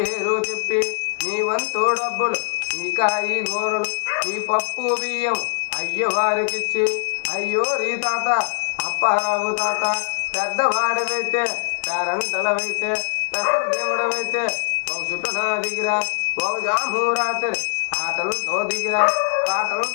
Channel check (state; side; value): silent; right; digital silence